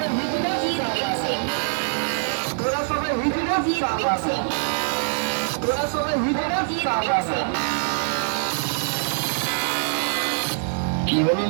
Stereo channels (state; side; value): silent; left; 63 dB below the other